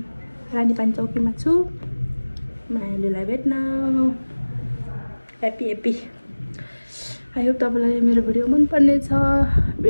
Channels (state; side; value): inverted; both; correlation -1.00